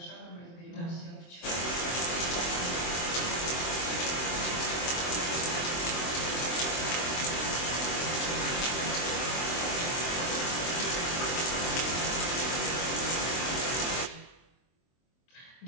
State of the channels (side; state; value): right; late; 23 ms